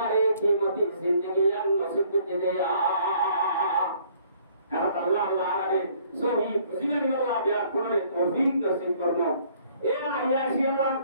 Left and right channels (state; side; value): inverted; both; correlation -0.60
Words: কিমতি জিন্দেগি আন নসিব করে দে আল্লাহ আলামিন সহি জিনানি আল্লাহ বিয়া করে তৌফিক নসিব করব এরা আয়াসি আল্লাহ